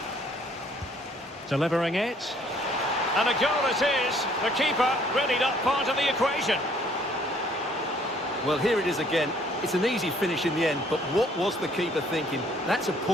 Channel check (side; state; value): both; normal; correlation 0.61